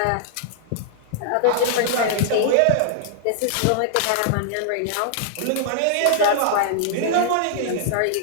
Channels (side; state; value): both; different; correlation -0.01